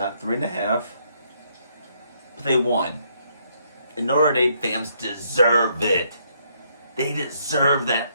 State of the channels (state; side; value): inverted; both; correlation -0.72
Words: 3.5. But they won. And Notre Dame fans deserve it. They deserve